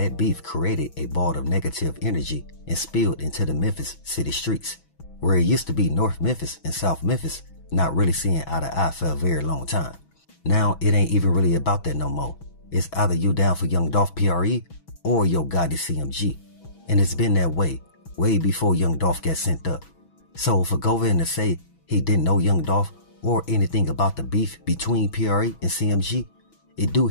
beef created a ball of negative energy and spilled into the Memphis city streets, where it used to be North Memphis and South Memphis not really seeing eye to eye for a very long time. Now it ain't even really about that no more. It's either you down for Young Dolph PRE or Yo Gotti CMG, and it's been that way before Young Dolph got sent up. So for Govan to say he didn't know Young Dolph or anything about the beef between PRE and CMG, it do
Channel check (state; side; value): late; right; 6.1 ms